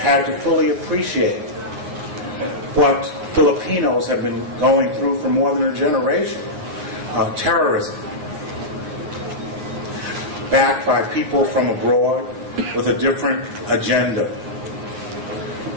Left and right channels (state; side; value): late; left; 9.9 ms